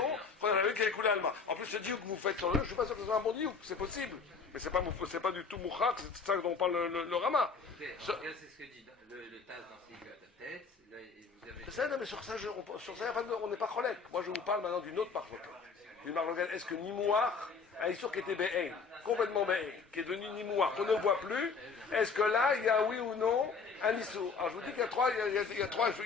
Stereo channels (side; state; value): right; quieter; 5.0 dB